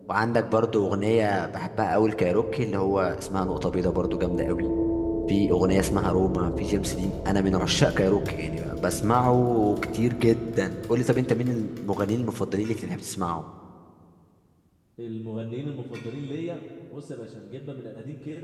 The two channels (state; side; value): identical; both; correlation 1.00